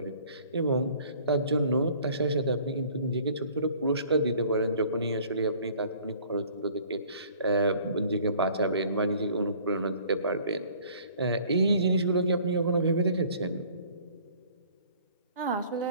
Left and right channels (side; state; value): both; inverted; correlation -0.53